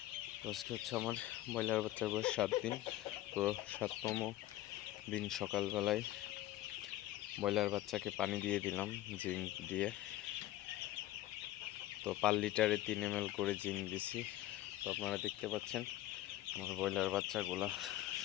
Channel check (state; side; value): quieter; right; 15.2 dB